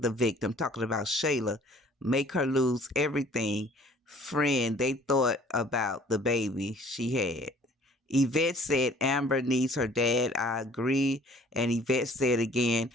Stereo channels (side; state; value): both; normal; correlation 0.54